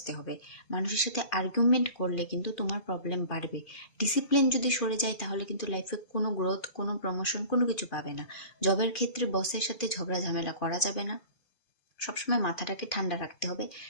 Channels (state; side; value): late; right; 2.5 ms